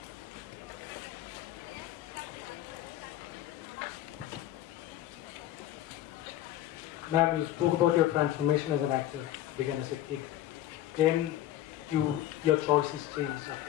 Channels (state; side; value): quieter; right; 13.2 dB